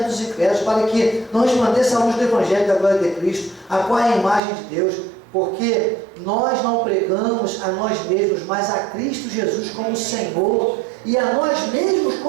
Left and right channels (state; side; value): drops out; left; at 4.4 s